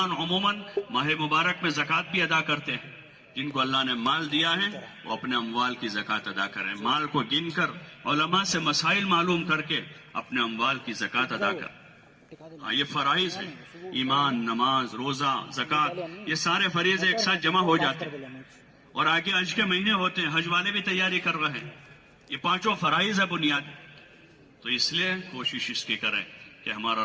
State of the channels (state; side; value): identical; both; correlation 1.00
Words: عموماً ماہ مبارک میں زکوٰۃ بھی ادا کرتے ہیں۔ جن کو اللہ نے مال دیا ہے وہ اپنے اموال کی زکوٰۃ ادا کریں، مال کو گن کر علماء سے مسائل معلوم کر کے اپنے اموال کی زکوٰۃ ادا کریں۔ ہاں، یہ فرائض ہیں، ایمان، نماز، روزہ، زکوٰۃ، یہ سارے فریضے ایک ساتھ جمع ہو جاتے ہیں، اور آگے حج کے مہینے ہوتے ہیں، حج والے بھی تیاری کر رہے ہیں۔ یہ پانچوں فرائض ہے بنیاد، تو اس لیے کوشش اس کی کریں کہ ہمارا